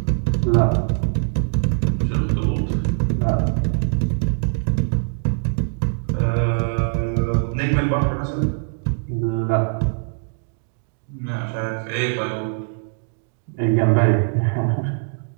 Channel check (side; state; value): left; silent; digital silence